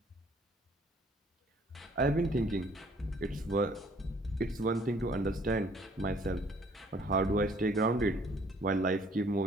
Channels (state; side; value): normal; both; correlation 0.59